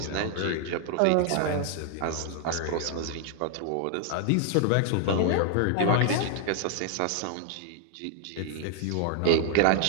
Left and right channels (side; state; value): both; different; correlation 0.00